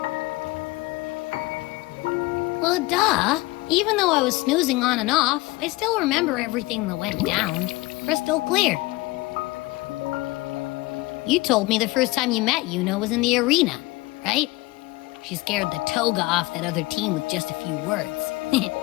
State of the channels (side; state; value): right; quieter; 21.7 dB